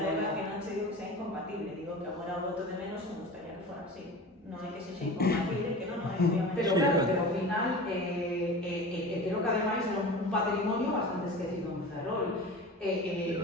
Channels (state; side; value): normal; both; correlation 0.35